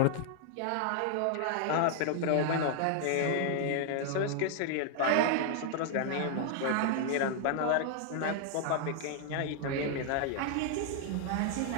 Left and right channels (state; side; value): different; both; correlation 0.00